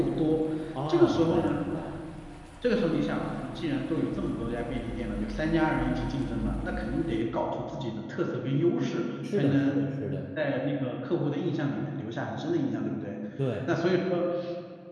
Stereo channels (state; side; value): identical; both; correlation 1.00